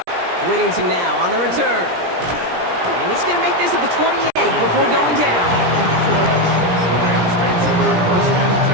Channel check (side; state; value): left; late; 17 ms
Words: Whittington now on the return. And he's going to make this at the 28 before going down. The Rams take over 1st and